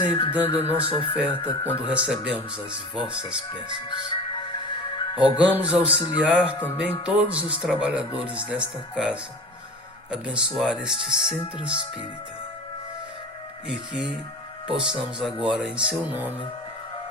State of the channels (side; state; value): both; normal; correlation 0.36